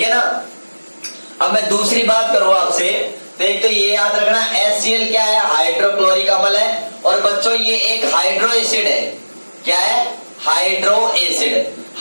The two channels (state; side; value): inverted; both; correlation -1.00